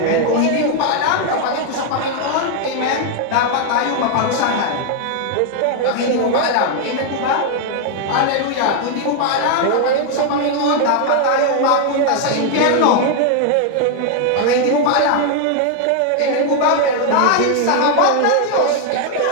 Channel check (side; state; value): both; different; correlation 0.00